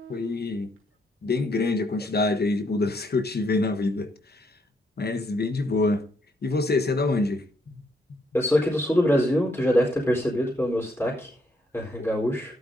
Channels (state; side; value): normal; both; correlation 0.73